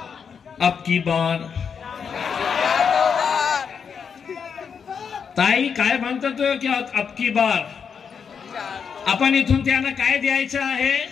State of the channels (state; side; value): quieter; right; 6.6 dB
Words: अब की बार ताई काय म्हणतो तो की अब की बार आपण इथून त्यांना काय द्यायचं आहे